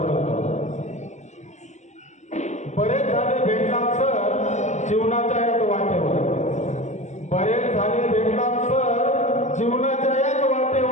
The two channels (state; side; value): late; right; 0.34 ms